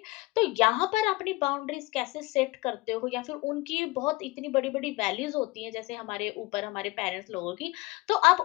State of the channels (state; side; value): quieter; right; 22.6 dB